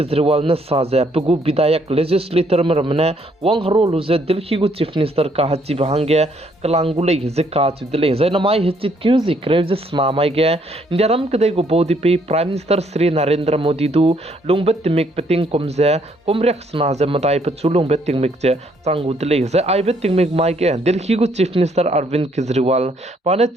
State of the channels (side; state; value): both; normal; correlation 0.68